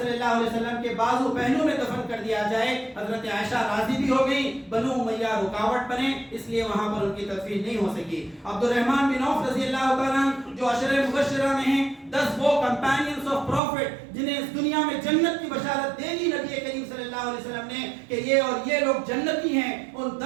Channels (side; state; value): left; drops out; at 13.6 s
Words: اللہ علیہ وسلم کے بازو پہلو میں دفن کر دیا جائے. حضرت عائشہ راضی بھی ہو گئی، بنو امیہ رکاوٹ بنے، اس لیے وہاں پر ان کی تدفین نہیں ہو سکی. عبد الرحمن بن عوف رضی اللہ تعالیٰ جو عشرہ مبشرہ میں ہیں، 10 وہ کمپینینز آف پروفٹ جنہیں اس دنیا میں جنت کی بشارت دے دی نبی کریم صلی اللہ علیہ وسلم نے کہ یہ اور یہ لوگ جنتی ہیں، ان